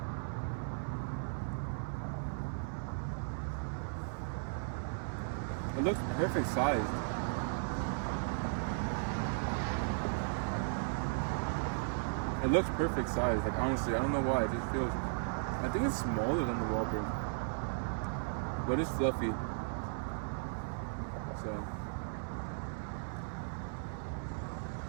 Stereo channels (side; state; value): left; silent; 54 dB below the other